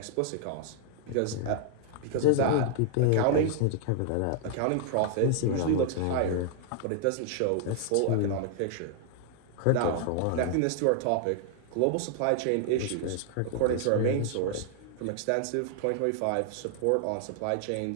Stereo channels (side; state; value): both; different; correlation -0.01